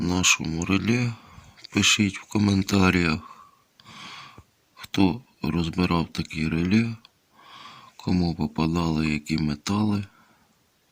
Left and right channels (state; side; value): identical; both; correlation 1.00